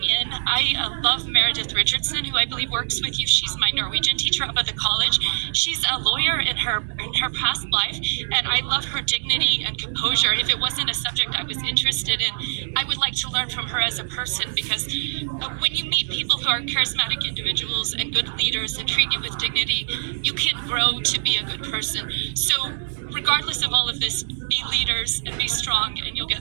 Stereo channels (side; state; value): left; silent; 63 dB below the other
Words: in. I love Meredith Richardson, who I believe works with you. She's my Norwegian teacher up at the college. She's a lawyer in her past life, and I love her dignity and composure. If it wasn't a subject I was interested in, I would like to learn from her as a person, because when you meet people who are charismatic individuals and good leaders and treat you with dignity, you can grow to be a good person. So regardless of all of this, be leaders and be strong, and you'll